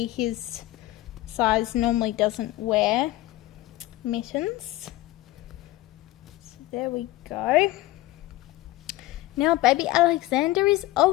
his size normally doesn't wear mittens. So there we go. Now baby Alexander is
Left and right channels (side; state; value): right; quieter; 17.2 dB